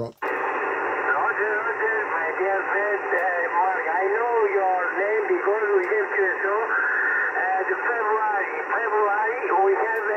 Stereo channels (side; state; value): both; identical; correlation 1.00